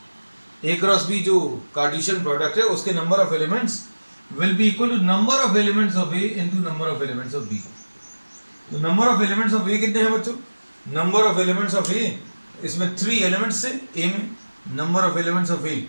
A cross B जो कार्टेशियन प्रोडक्ट है उसके number of elements will be equal to number of elements of A into number of elements of B. तो number of elements of A कितने हैं बच्चों, number of elements of A, इसमें 3 elements है A में, number of elements of A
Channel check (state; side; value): inverted; both; correlation -1.00